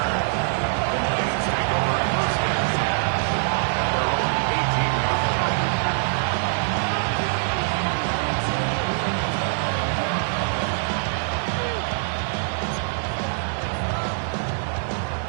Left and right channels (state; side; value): silent; left; 63 dB below the other